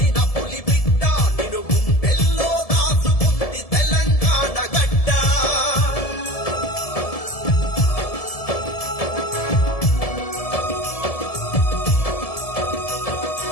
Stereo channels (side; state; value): right; late; 1.7 ms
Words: పులి బిడ్డ నిన్ను గుండెల్లో దాచుకుంది తెలంగాణ గడ్డ